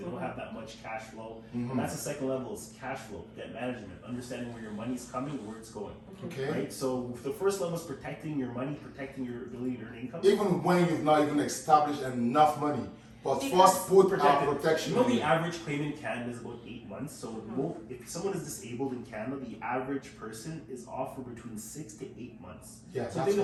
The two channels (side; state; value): both; identical; correlation 1.00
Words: don't have that much cash flow, and that's the second level is cash flow, debt management, understanding where your money's coming and where it's going. Okay. Right. So the first level is protecting your money, protecting your ability to earn income. Even when you've not even established enough money, but first put protection. The average claim in Canada is about 8 months. So if someone is disabled in Canada, the average person is off for between 6 to 8 months. Yeah, so that's